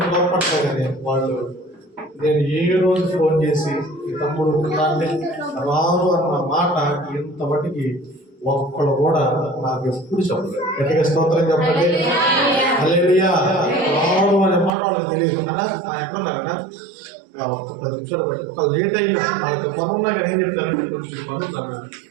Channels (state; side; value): drops out; left; at 14.7 s